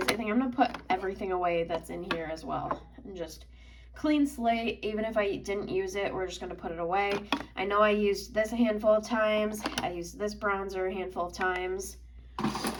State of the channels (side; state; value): both; identical; correlation 1.00